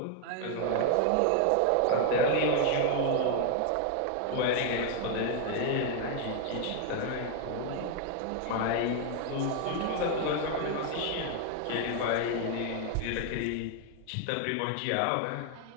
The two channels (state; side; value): different; both; correlation 0.00